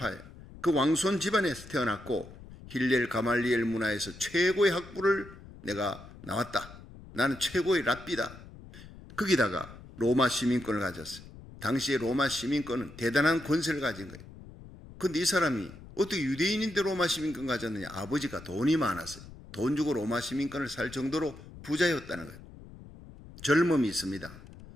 그 왕손 집안에서 태어났고 힐렐 가말리엘 문화에서 최고의 학부를 내가 나왔다. 나는 최고의 랍비다. 거기다가 로마 시민권을 가졌어요. 당시에 로마 시민권은 대단한 권세를 가진 거예요. 그런데 이 사람이 어떻게 유대인인데 로마 시민권 가졌느냐? 아버지가 돈이 많았어요. 돈 주고 로마 시민권을 살 정도로 부자였다는 거예요. 젊음이 있습니다.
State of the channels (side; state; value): left; noise; rumble, 17 dB below the sound